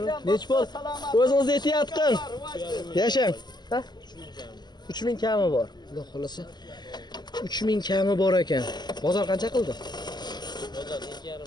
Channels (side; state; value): right; late; 0.21 ms